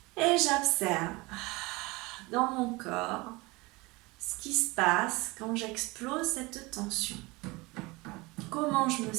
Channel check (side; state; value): left; quieter; 23.6 dB